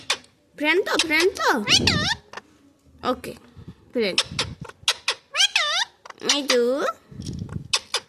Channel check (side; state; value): both; identical; correlation 1.00